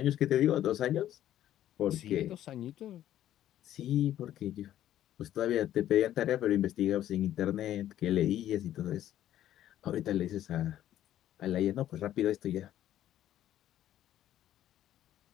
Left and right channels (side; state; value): right; quieter; 12.2 dB